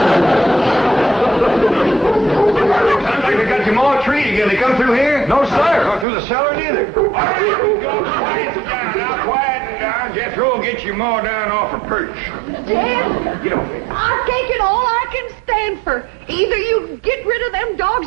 Sounds like they got your more treat again. They come through here? No, sir. Or through the cellar neither. All right, go quiet down. Now, quiet down. Jethro will get you more down off a perch. Dad, Get over here. I've taken all I can stand for. Either you get rid of them dogs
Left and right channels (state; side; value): drops out; left; at 6.1 s